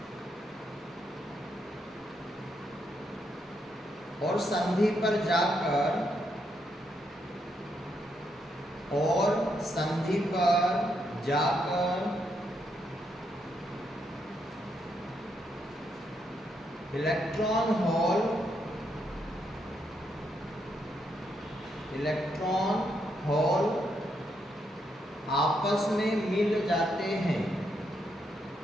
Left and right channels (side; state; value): both; normal; correlation 0.78